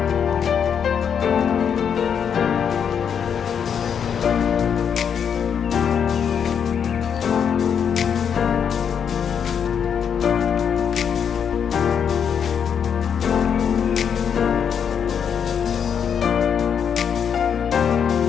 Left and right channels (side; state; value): right; quieter; 7.6 dB